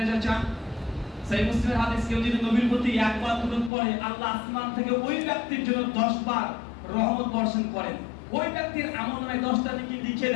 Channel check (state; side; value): drops out; right; at 3.7 s